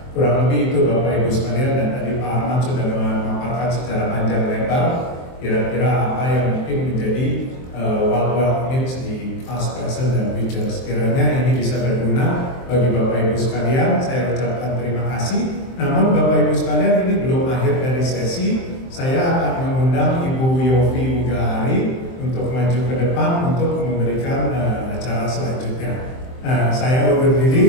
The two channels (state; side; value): late; right; 23 ms